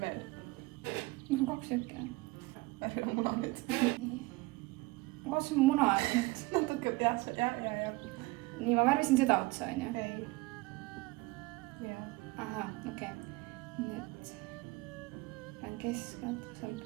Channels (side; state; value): left; quieter; 22.3 dB